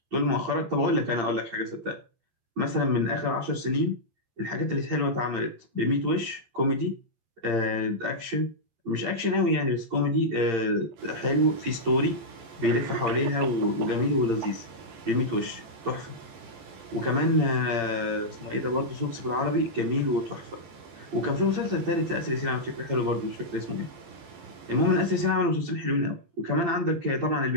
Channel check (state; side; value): late; left; 11 ms